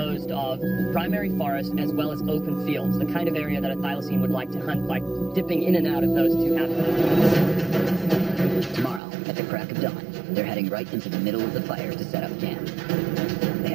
of primary forest as well as open fields, the kind of area that a thylacine would like to hunt by dipping in and out of those two habitats. Tomorrow, at the crack of dawn, they're heading right into the middle of the fires to set up camp. They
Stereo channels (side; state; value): left; drops out; at 9.0 s